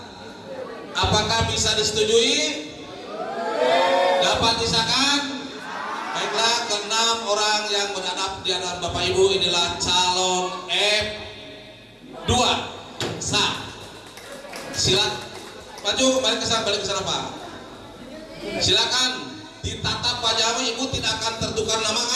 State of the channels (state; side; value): identical; both; correlation 1.00